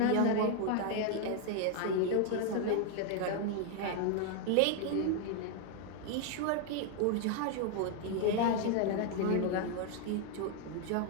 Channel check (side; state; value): both; different; correlation 0.00